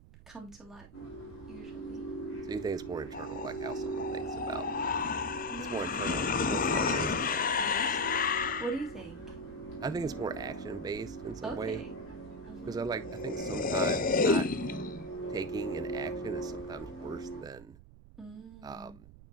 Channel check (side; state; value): right; noise; rumble, 19 dB below the sound